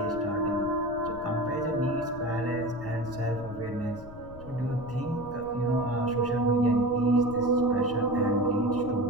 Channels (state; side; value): noise; left; rumble, 15 dB below the sound